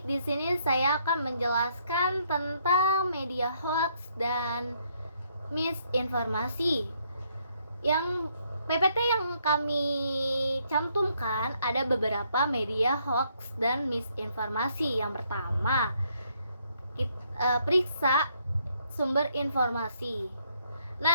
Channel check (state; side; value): inverted; both; correlation -0.71